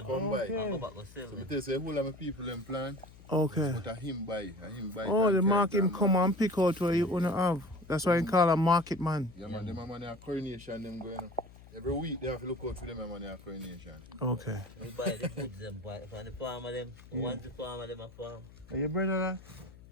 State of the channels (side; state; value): left; noise; hum, 20 dB below the sound